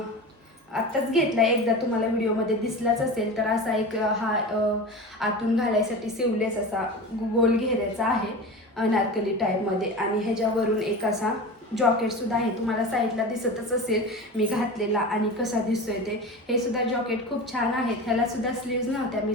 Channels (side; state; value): both; normal; correlation 0.30